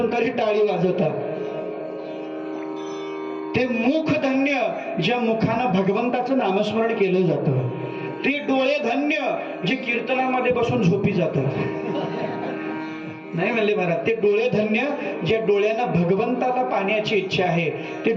तरी टाळी वाजवतात, ते मुख धन्य ज्या मुखानं भगवंताचं नामस्मरण केलं जातं, ते डोळे धन्य जे कीर्तनामध्ये बसून झोपी जातात. नाही म्हणले महाराज, ते डोळे धन्य ज्या डोळ्यानं भगवंताला पाहण्याची इच्छा आहे, ते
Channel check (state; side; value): identical; both; correlation 1.00